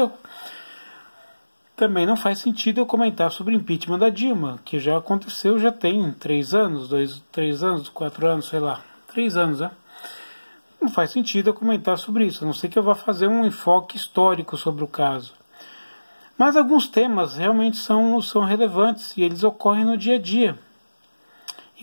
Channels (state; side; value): inverted; both; correlation -1.00